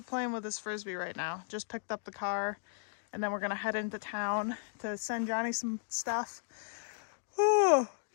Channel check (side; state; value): right; silent; digital silence